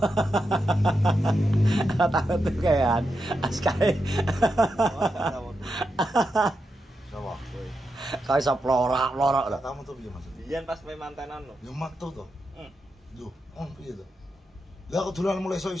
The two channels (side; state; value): both; normal; correlation 0.86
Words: Ora tau metu kayak askae. Sapa? Kae iso plorak-plorak lho. Lah kamu tuh piye maksud? Biyen pas main mantenan lho. Ya metu to. Hmm. Lho, piye to? Lah kok dolan mulai